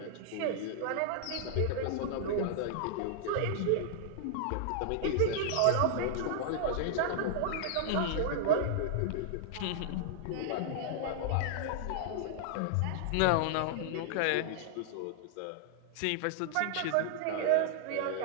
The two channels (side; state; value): both; different; correlation -0.01